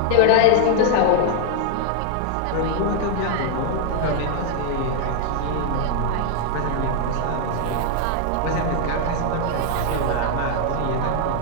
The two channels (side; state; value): both; different; correlation 0.00